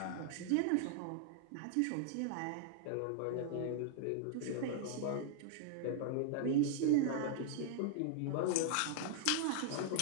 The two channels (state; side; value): different; both; correlation -0.01